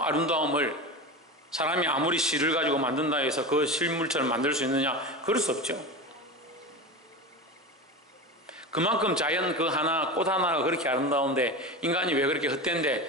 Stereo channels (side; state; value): both; normal; correlation 0.26